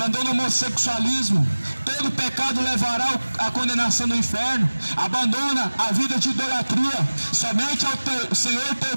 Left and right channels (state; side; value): inverted; both; correlation -1.00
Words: o homossexualismo. Todo pecado levará à condenação do inferno. Abandona a vida de idolatria. Somente ao Senhor teu